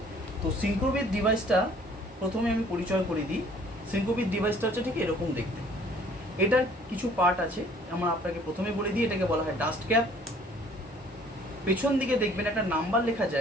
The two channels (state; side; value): normal; both; correlation 0.56